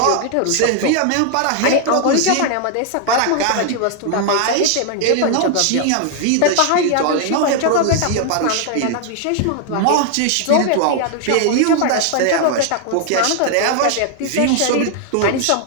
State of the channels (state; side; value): different; both; correlation 0.00